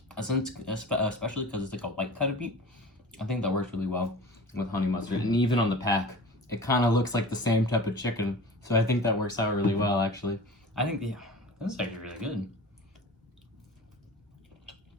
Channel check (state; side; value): normal; both; correlation 0.37